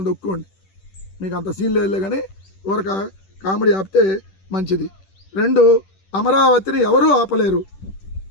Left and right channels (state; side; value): late; right; 10 ms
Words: తొక్కుకోండి. మీకు అంత సీన్ లేదులే. కానీ ఊరక కామెడీ ఆపితే మంచిది. 2, అమరావతిని ఎవరూ ఆపలేరు.